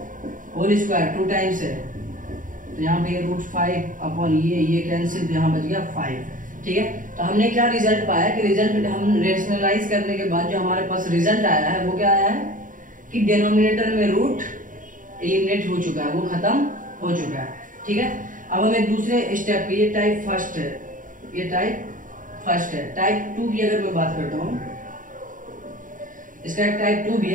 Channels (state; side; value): late; left; 0.39 ms